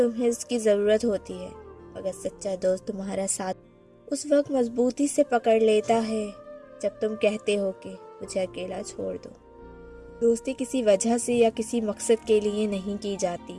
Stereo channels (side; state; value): both; identical; correlation 1.00